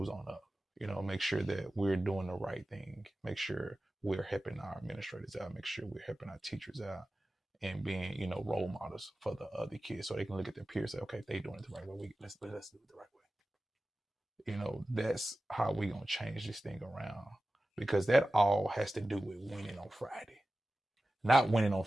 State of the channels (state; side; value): normal; both; correlation 0.95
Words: on up. Make sure that we're doing the right thing. Make sure we're helping our administrators out. Make sure we're helping our teachers out, and being, role models for the other kids, so they can look at their peers and say, okay, if they're doing it the right way, let's do it the right way. That's how we gonna change this thing around, because that all has to do with winning on Friday. Not winning on